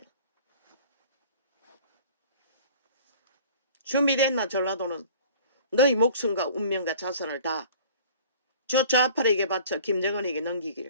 준비됐나 전라도는? 너희 목숨과 운명과 자산을 다 저 좌파에게 바쳐 김정은에게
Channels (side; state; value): both; inverted; correlation -0.46